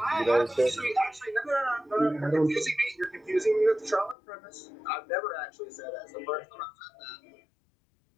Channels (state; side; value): drops out; right; at 4.2 s